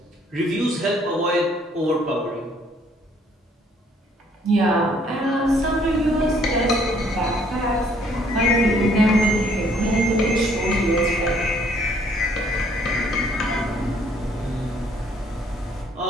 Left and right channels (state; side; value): normal; both; correlation 0.63